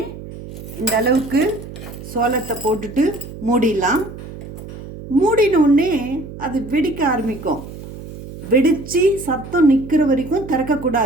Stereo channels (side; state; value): right; noise; hum, 13 dB below the sound